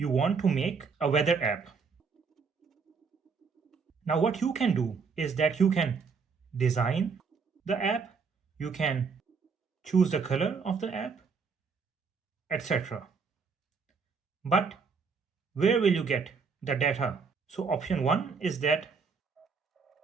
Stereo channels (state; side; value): quieter; left; 5.2 dB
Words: want to make a weather app. Now what you can do is that you can design the app, you can choose the color of the app, etc. But where will you get the data? So option 1 is that